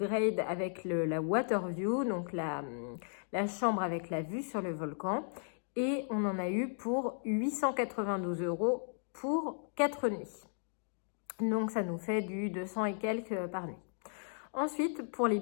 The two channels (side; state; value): right; silent; digital silence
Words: avec la water view, donc la chambre avec la vue sur le volcan. Et on en a eu pour 892 € pour 4 nuits. Donc ça nous fait du 200 et quelques par nuit. Ensuite, pour les